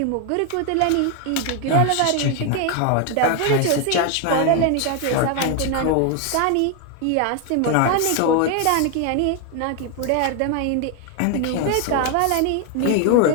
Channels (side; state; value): both; different; correlation 0.00